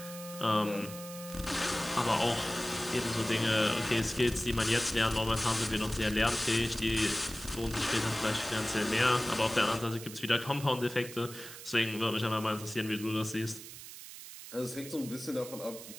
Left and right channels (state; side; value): noise; right; hiss, 13 dB below the sound